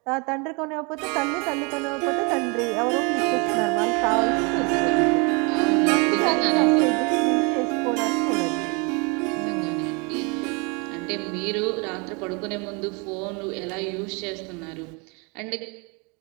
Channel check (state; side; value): quieter; left; 31.3 dB